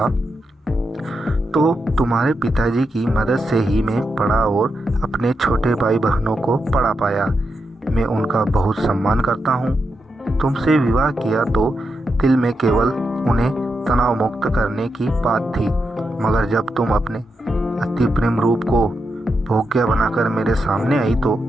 तो तुम्हारे पिताजी की मदद से ही मैं पढ़ा और अपने छोटे भाई बहनों को पढ़ा पाया। मैं उनका बहुत सम्मान करता हूँ। तुमसे विवाह किया तो दिल में केवल उन्हें तनाव मुक्त करने की बात थी, मगर जब तुम अपने अति प्रेम रूप को भोग्य बनाकर मेरे सामने आई तो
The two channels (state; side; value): normal; both; correlation 0.85